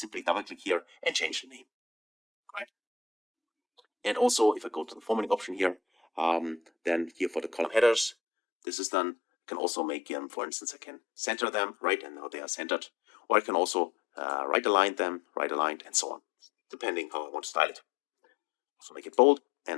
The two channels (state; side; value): drops out; right; at 8.2 s